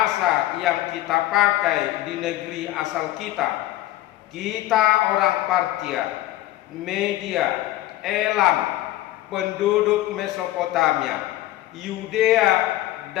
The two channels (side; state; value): right; quieter; 15.6 dB